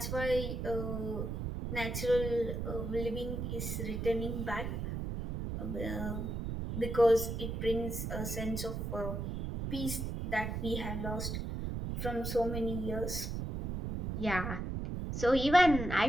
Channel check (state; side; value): noise; right; rumble, 3 dB below the sound